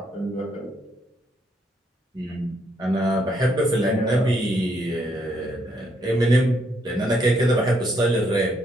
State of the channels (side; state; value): both; normal; correlation 0.73